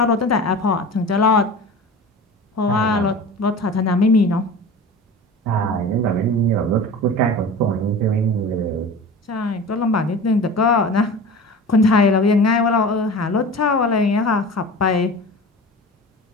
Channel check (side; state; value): both; normal; correlation 0.35